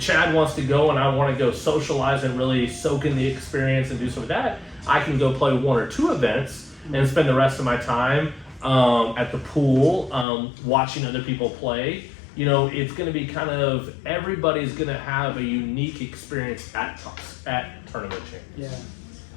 Chad wants to go and I want to go socialize and really soak in the experience and do some of that, I can go play one or two events and spend the rest of my time at the pool watching other people play you know, it's going to be kind of everybody's going to have a unique experience at tournament champions. Yeah.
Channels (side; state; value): right; drops out; at 10.2 s